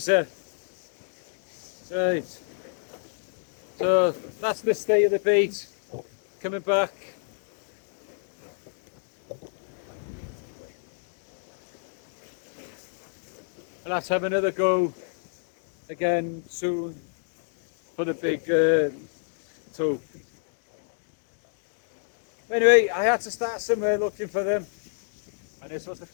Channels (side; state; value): right; silent; digital silence